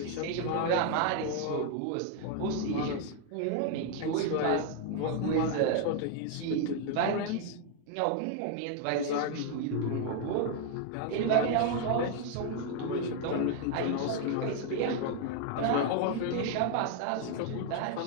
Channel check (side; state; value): both; different; correlation 0.00